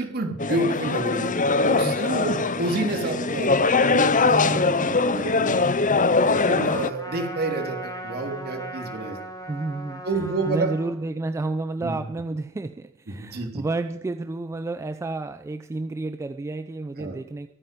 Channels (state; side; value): normal; both; correlation 0.12